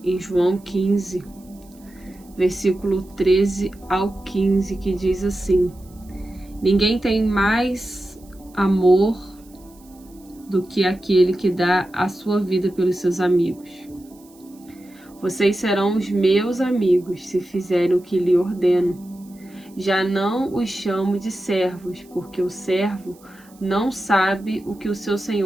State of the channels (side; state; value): right; noise; hiss, 28 dB below the sound